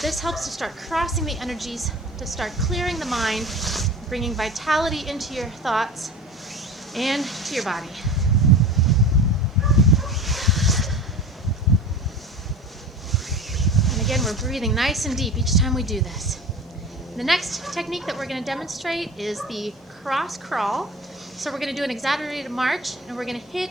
This helps to start crossing the energies, to start clearing the mind, bringing vitality into your thoughts and to your body. And again, we're breathing nice and deep each time we do this. The next technique that we're going to demonstrate is the cross crawl. So we're going to do an exaggerated march, and we're going to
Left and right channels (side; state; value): both; normal; correlation 0.35